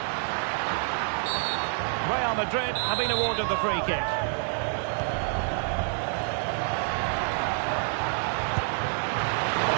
Real Madrid have been awarded the free kick. Well,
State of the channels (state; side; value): silent; left; 56 dB below the other